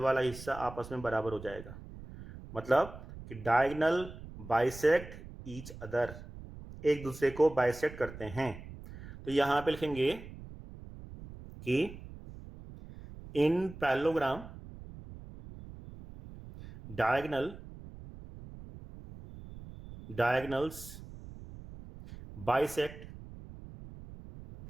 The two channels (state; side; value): noise; right; rumble, 15 dB below the sound